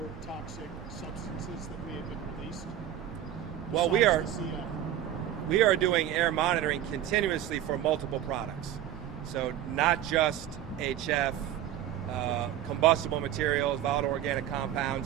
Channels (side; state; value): left; quieter; 11.3 dB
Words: toxic substances that may have been released? Well, besides the CF? we are doing air monitoring continuously for multiple products. So not just HF, combustible materials, volatile organic